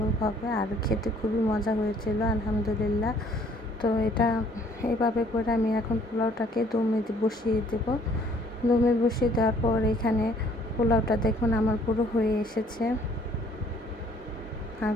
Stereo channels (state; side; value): normal; both; correlation 0.60